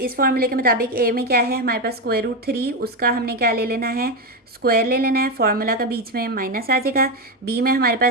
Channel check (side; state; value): both; normal; correlation 0.11